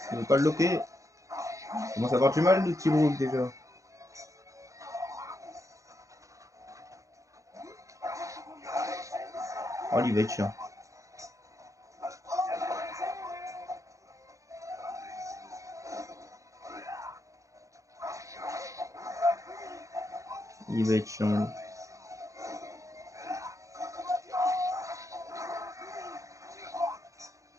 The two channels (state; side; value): late; left; 0.15 ms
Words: il veut pas le loquer. Il commence à avoir du mal le petit Brook déjà. Oh, il va être chiant. Il va être chiant.